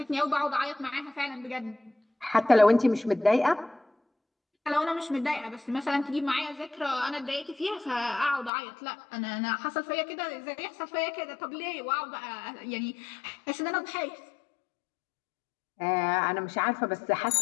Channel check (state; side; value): drops out; right; at 8.5 s